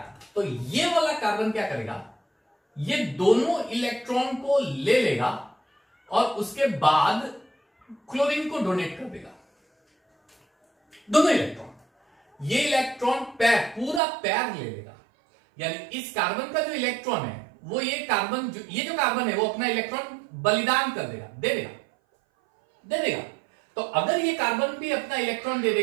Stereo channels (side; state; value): left; drops out; at 14.0 s